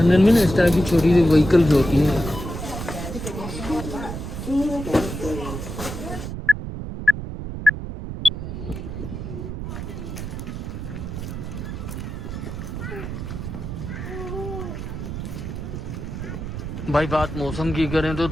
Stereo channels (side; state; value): right; noise; rumble, 6 dB below the sound